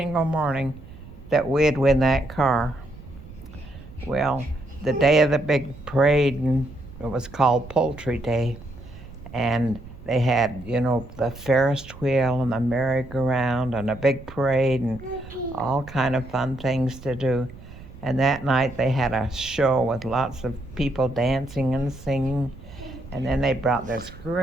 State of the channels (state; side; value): noise; right; rumble, 17 dB below the sound